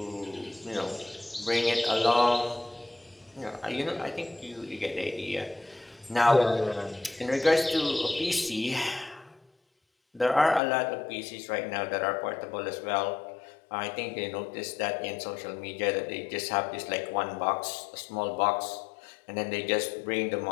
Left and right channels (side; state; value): right; drops out; at 10.6 s